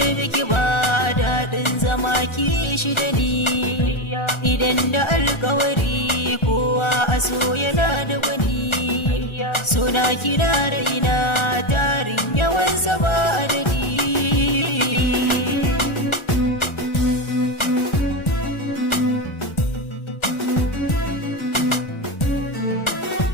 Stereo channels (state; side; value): late; right; 1.4 ms